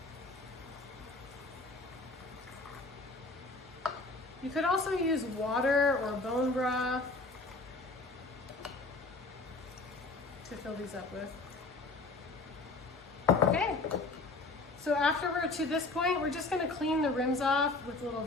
You could also use water or bone broth to fill these up with. Okay. So after we're to this point, we're just gonna clean the rims off with a little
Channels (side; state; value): right; quieter; 3.4 dB